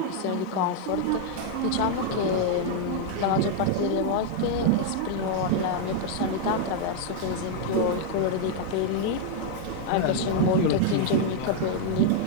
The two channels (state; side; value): different; both; correlation 0.00